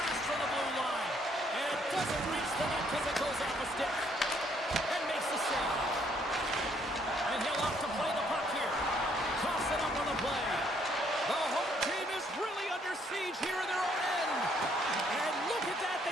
from the blue line. And it doesn't reach the net because it goes off a stick. And makes the save. And he'll off to play the puck here. Toss it up on the play. The home team is really under siege here in their own end. And look at that.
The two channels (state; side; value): normal; both; correlation 0.68